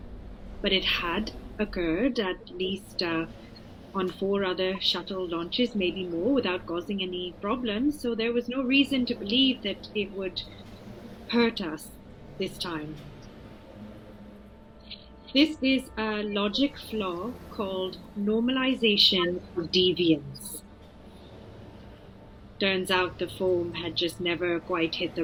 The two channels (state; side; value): identical; both; correlation 1.00